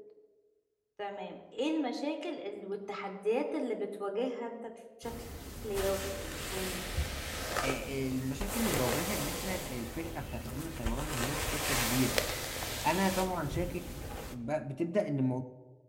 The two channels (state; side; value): identical; both; correlation 1.00